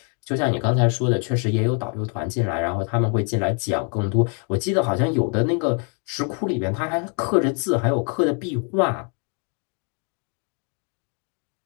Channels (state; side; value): quieter; right; 38.8 dB